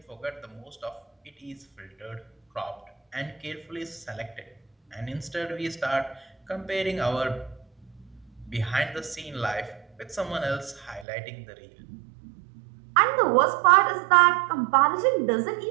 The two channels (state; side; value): drops out; left; at 11.1 s